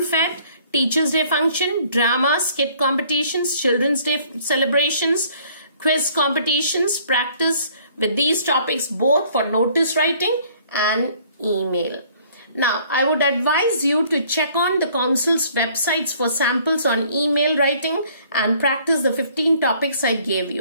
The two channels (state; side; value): inverted; both; correlation -0.58